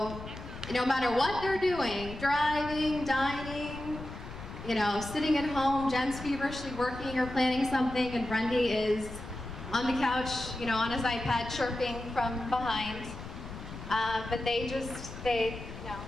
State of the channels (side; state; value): left; noise; rumble, 11 dB below the sound